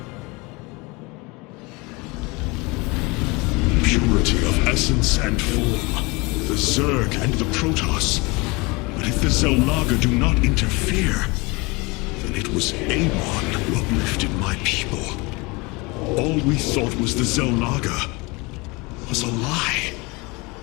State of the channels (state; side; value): quieter; right; 25.9 dB